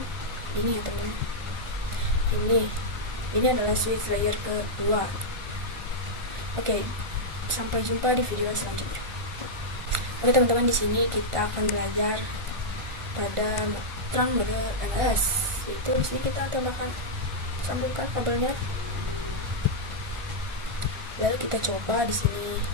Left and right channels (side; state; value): left; late; 1.4 ms